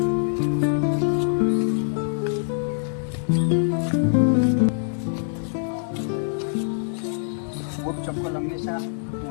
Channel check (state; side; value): silent; right; digital silence